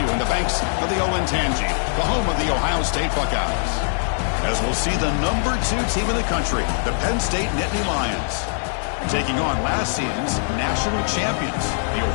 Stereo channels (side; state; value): right; silent; 64 dB below the other